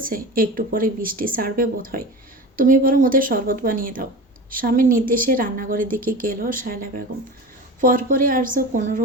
একটু পরে বৃষ্টি ছাড়বে বোধ হয়, তুমি বরং ওদের শরবত বানিয়ে দাও। স্বামীর নির্দেশে রান্নাঘরের দিকে গেল শায়লা বেগম। পরপরই আর্য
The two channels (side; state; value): both; normal; correlation 0.30